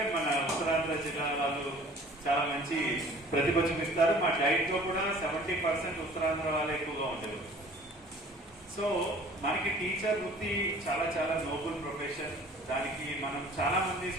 మన ఉత్తరాంధ్ర జిల్లా వాళ్ళు చాలా మంచి ప్రతిభ చూపిస్తారు. మా డైట్ లో కూడా 70% ఉత్తరాంధ్ర వాళ్ళు ఎక్కువగా ఉండేవారు. సో మనకి టీచర్ వృత్తి చాలా చాలా నోబుల్ ప్రొఫెషన్. దానికి మనం చాలా మంది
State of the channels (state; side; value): normal; both; correlation 0.49